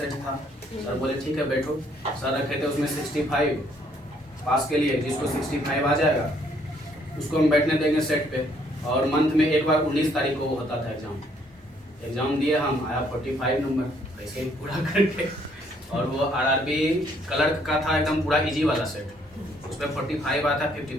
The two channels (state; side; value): normal; both; correlation 0.66